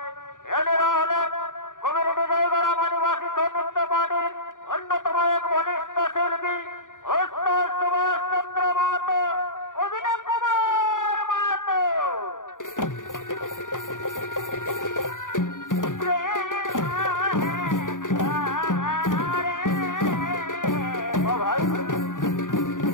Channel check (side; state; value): right; late; 0.88 ms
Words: এনারা হলেন কমিউনিটি জয়গড়া আদিবাসী সৌনৃত্য পার্টির অন্যতম এক বলিষ্ঠ শিল্পী ওস্তাদ সুভাষ চন্দ্র মাহাতো, অভিনয় কুমার মাহাতো।